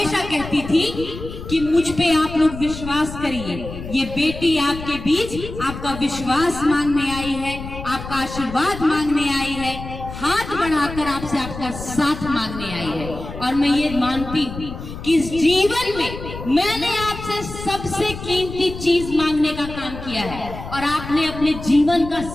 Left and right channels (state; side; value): noise; left; rumble, 10 dB below the sound